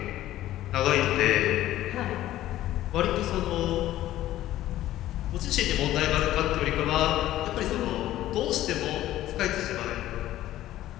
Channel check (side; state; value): right; quieter; 14.1 dB